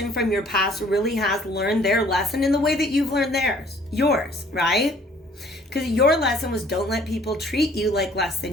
from your past really has learned their lesson in the way that you've learned yours, right? Because your lesson was don't let people treat you like less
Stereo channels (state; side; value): normal; both; correlation 0.56